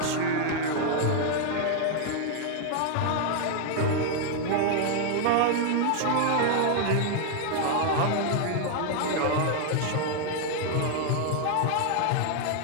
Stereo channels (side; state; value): both; different; correlation 0.00